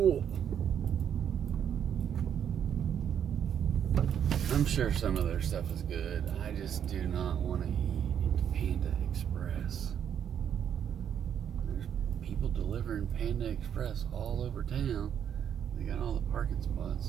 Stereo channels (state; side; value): quieter; left; 8.8 dB